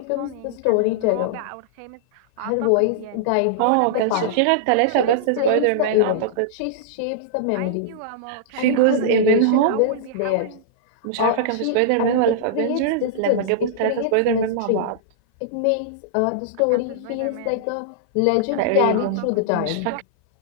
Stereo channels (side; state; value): both; different; correlation -0.02